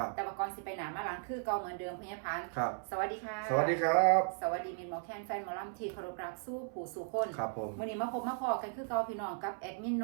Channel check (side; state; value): left; silent; 54 dB below the other